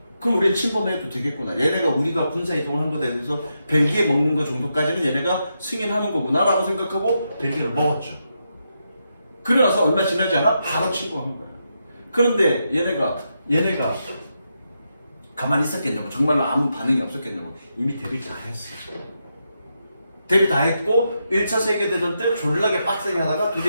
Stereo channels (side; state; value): both; inverted; correlation -0.84